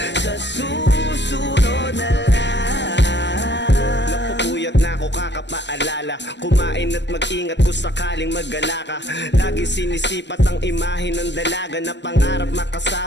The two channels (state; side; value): late; right; 0.51 ms